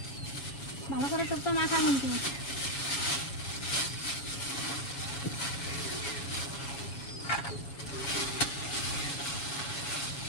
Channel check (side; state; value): right; late; 7.2 ms